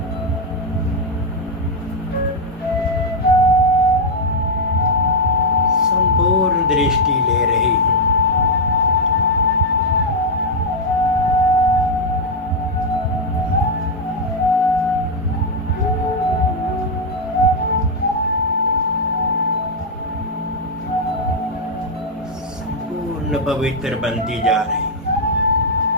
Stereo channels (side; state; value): both; normal; correlation 0.00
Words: संपूर्ण दृष्टि ले रही हूं। संपूर्ण पवित्र बनती जा रही।